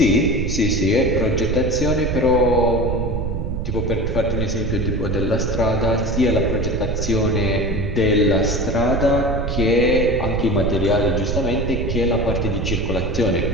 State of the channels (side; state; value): right; noise; rumble, 2 dB below the sound